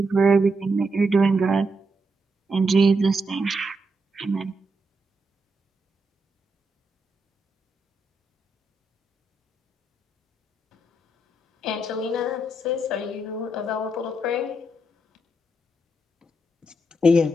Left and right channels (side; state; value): both; normal; correlation 0.81